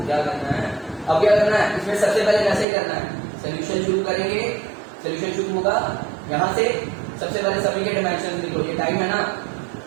क्या करना है। अब क्या करना है, इसमें सबसे पहले कैसे करना है, सोल्यूशन शुरू करेंगे। सोल्यूशन शुरू होगा यहां से, सबसे पहले सभी के डायमेंशन लिखो, ये टाइम है ना,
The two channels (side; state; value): left; drops out; at 2.7 s